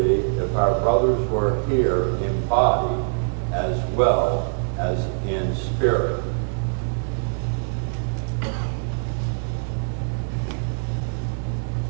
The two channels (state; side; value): silent; left; digital silence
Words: if our brothers were here in body as well as in spirit.